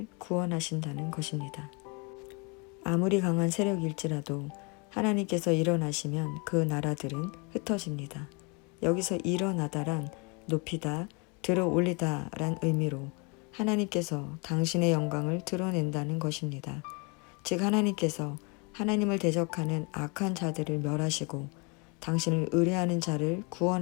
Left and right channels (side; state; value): right; quieter; 31.6 dB